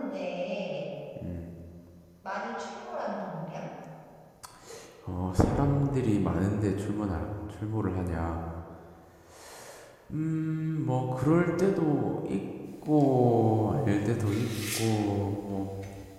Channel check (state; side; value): identical; both; correlation 1.00